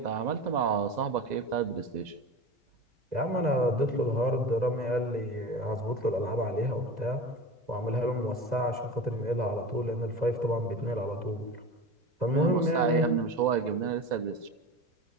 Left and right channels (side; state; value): left; late; 2.0 ms